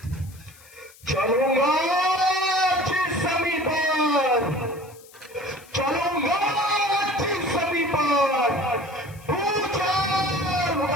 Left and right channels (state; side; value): noise; left; hiss, 24 dB below the sound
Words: चलूंगा जिस सभी पर, चलूंगा जिस सभी पर, पूछा